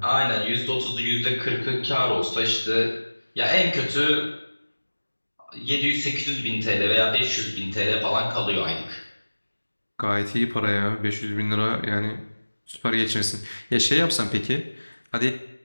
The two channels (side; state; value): both; inverted; correlation -1.00